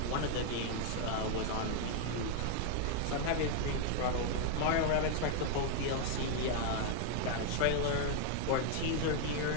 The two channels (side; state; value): both; different; correlation 0.00